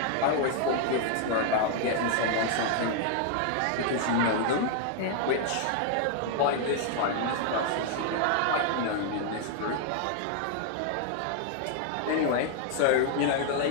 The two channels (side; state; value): both; different; correlation 0.00